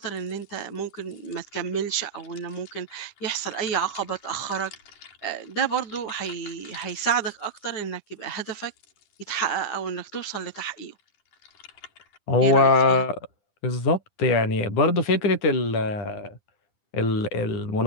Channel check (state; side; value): late; right; 9.8 ms